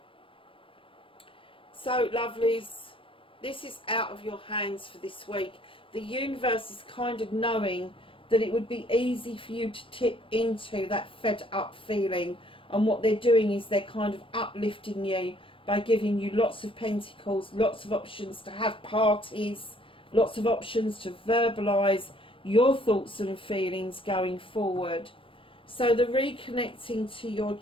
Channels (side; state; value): right; late; 0.25 ms